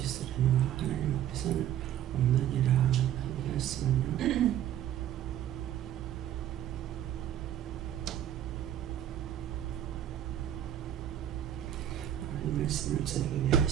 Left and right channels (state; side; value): quieter; left; 11.1 dB